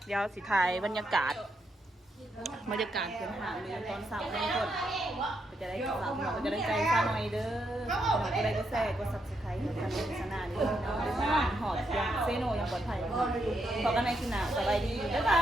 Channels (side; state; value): both; normal; correlation 0.80